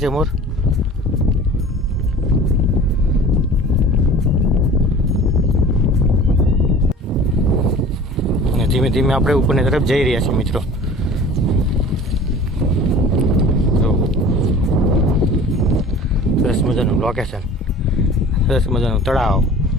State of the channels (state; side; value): normal; both; correlation 0.43